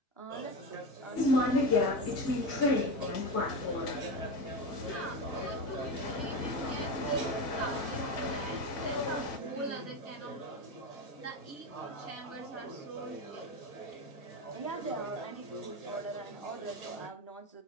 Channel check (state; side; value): late; right; 1.9 ms